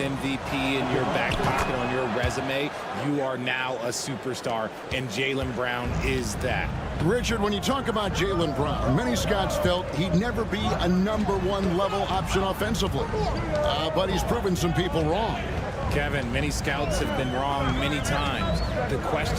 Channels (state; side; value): identical; both; correlation 1.00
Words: in your back pocket on your resume, you are now a superstar, and Jaylen Brown is that. Richard, when you talk about Jaylen Brown, many scouts felt he'd never be a #1 level option offensively. But he's proven some people wrong. Kevin, many scouts have been wrong many times. The